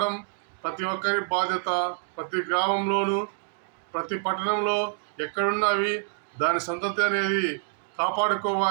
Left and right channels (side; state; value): left; silent; digital silence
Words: ప్రతి ఒక్కరి బాధ్యత. ప్రతి గ్రామంలోనూ ప్రతి పట్టణంలో ఎక్కడున్నా అవి దాని సంతతి అనేది